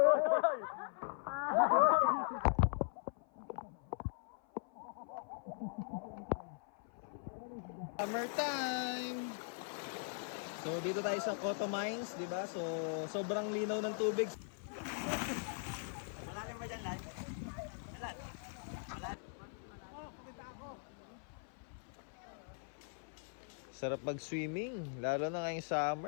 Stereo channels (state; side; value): silent; right; 51 dB below the other